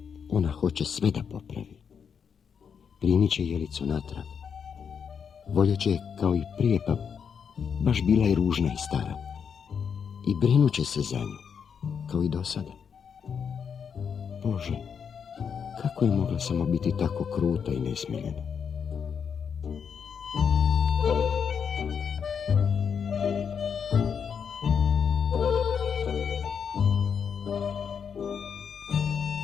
ona hoće sve da popravi. Primit će jelicu natrag. Voljet će kao i prije, pa baš bila je ružna i stara. I brinut će se za nju, kao i do sada. Bože, kako je mogla samo biti tako kruta i nesmiljena?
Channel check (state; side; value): quieter; right; 7.0 dB